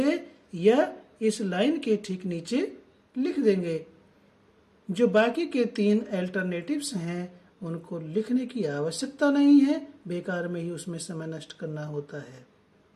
या इस लाइन के ठीक नीचे लिख देंगे। जो बाकी के 3 अल्टरनेटिव्स हैं उनको लिखने की आवश्यकता नहीं है, बेकार में ही उसमें समय नष्ट करना होता है।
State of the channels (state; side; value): identical; both; correlation 1.00